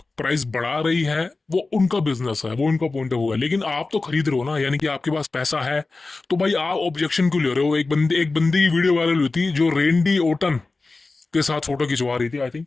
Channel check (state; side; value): quieter; right; 3.6 dB